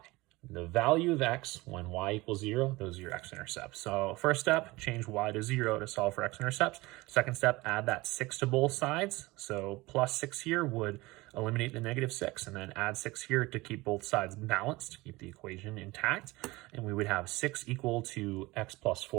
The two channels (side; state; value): left; quieter; 21.2 dB